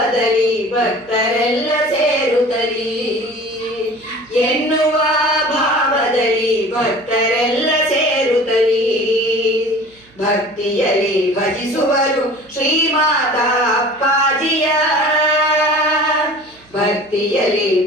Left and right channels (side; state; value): right; noise; hum, 30 dB below the sound